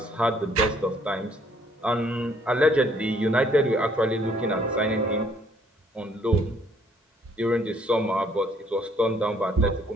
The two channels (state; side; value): normal; both; correlation 0.64